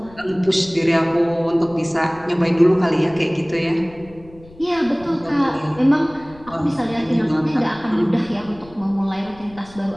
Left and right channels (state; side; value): noise; left; rumble, 22 dB below the sound